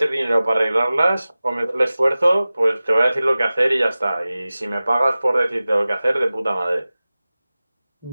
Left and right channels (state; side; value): inverted; both; correlation -0.97